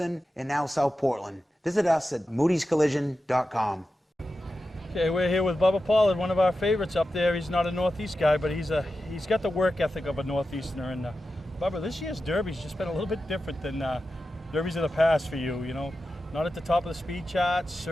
and now South Portland. Visit us at moodyscollision.com. Okay, we're here with Bubba Pollard, one of our favorites up there. He's not a Northeast guy, but he's got the work ethic of a Northeasterner. And Bubba, this year's Derby's just been a little bit different than Derbies of the past for you, you know. Not at the top of the speed charts,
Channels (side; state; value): both; normal; correlation 0.91